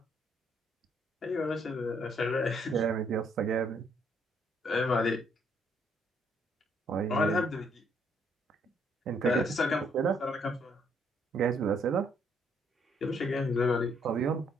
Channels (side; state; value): both; normal; correlation 0.69